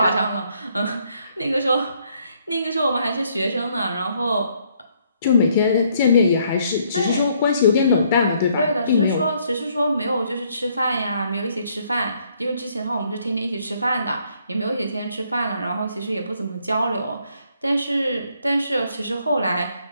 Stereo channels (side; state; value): both; inverted; correlation -0.69